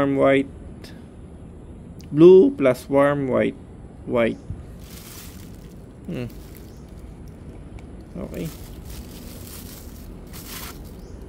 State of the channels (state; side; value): identical; both; correlation 1.00